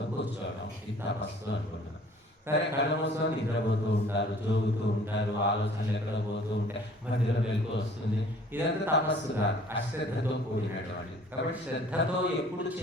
కూర్చోవడం, ఇది తపస్సు అనుకుంటున్నాం. సరే, కళ్ళు మూసుకొని నిద్రపోతూ ఉంటారు, జోగుతూ ఉంటారు, ఆలోచనలు ఎక్కడ పోతూ ఉంటాయి, మధ్యలో వెలుగు వస్తుంది. ఇదంతా తపస్సు కాదు, అశ్రద్ధతో కూడినటువంటి. కాబట్టి శ్రద్ధతో ఎప్పుడు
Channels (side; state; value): both; normal; correlation 0.53